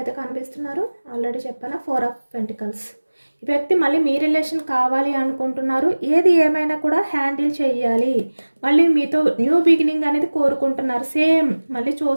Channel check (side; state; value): both; inverted; correlation -1.00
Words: కనిపిస్తున్నారు. ఆల్రెడీ చెప్పాను 4 ఆఫ్ పెంటికల్స్. ఈ వ్యక్తి మళ్ళీ మీ రిలేషన్ కావాలి అనుకుంటున్నారు. ఏది ఏమైనా కూడా హ్యాండిల్ చేయాలి, మళ్ళీ మీతో న్యూ బిగినింగ్ అనేది కోరుకుంటున్నారు. సేమ్ మళ్ళీ